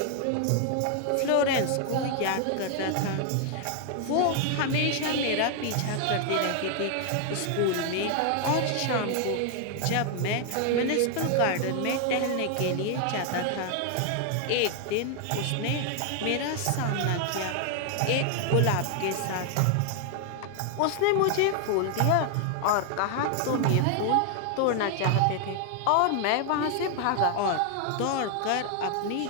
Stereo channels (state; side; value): different; both; correlation 0.00